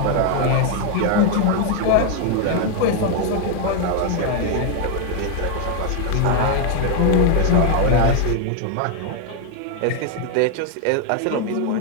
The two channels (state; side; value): different; both; correlation 0.00